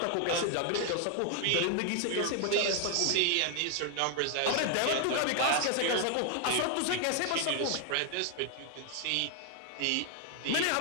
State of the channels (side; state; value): both; different; correlation 0.00